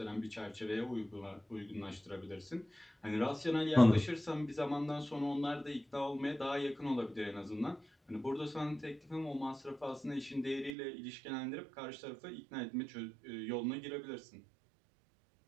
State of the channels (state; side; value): drops out; left; at 10.8 s